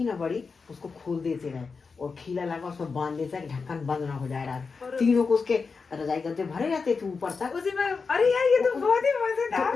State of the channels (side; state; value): right; quieter; 4.8 dB